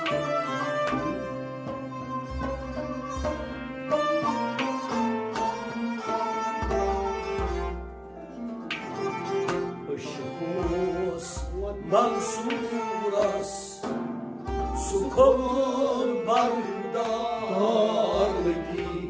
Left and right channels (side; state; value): both; identical; correlation 1.00